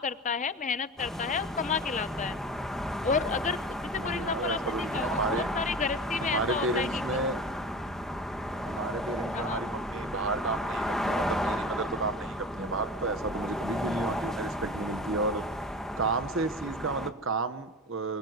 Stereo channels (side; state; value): both; normal; correlation 0.32